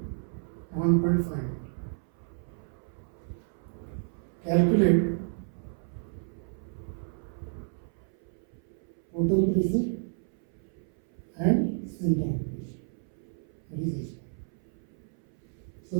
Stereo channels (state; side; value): silent; left; 57 dB below the other